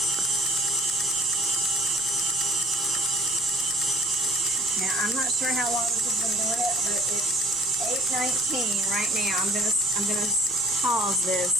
Now, I'm not sure how long this has been doing it, but it's 8:19 right now. I'm gonna pause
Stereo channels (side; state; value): right; noise; rumble, 24 dB below the sound